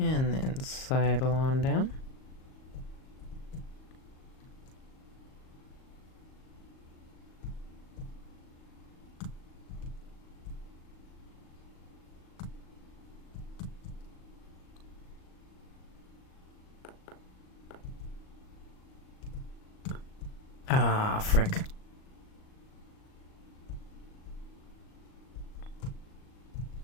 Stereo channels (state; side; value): late; right; 38 ms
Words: then sidle on down. Ah, frick.